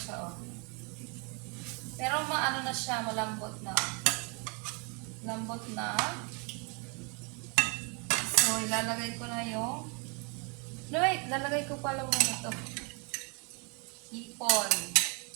oh. Pero maano na siya, malambot na. Lambot na. So, ilalagay ko na yung... No, wait, lalagay ko pala muna ito. Hipon.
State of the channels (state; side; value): quieter; left; 33.7 dB